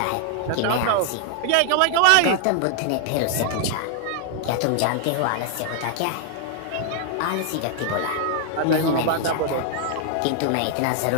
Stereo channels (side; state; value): both; different; correlation 0.00